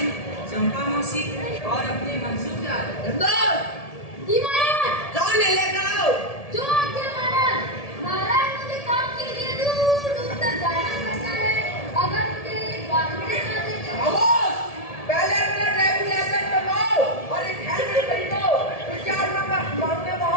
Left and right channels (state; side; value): late; right; 1.7 ms